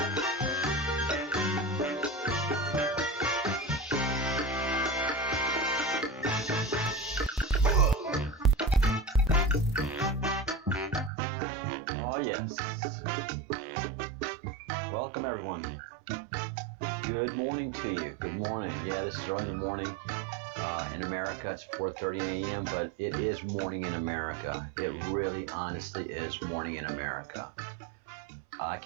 Oh yes. Welcome everyone. Good morning to you. Good morning. Yeah, this is early in the morning in America. It's 4:30 a.m., but it is morning in America. It really, honestly is morning in America. I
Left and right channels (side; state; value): left; drops out; at 11.1 s